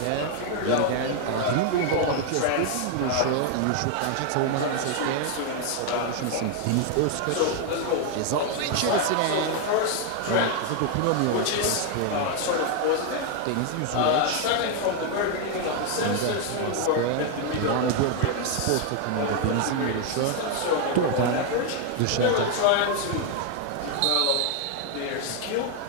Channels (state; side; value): different; both; correlation 0.00